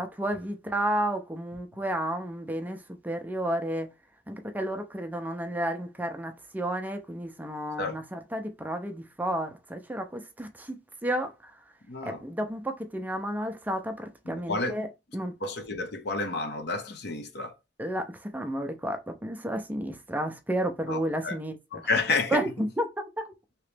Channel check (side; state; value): both; normal; correlation 0.59